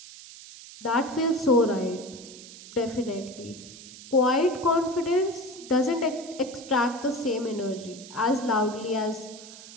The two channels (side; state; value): right; noise; hiss, 16 dB below the sound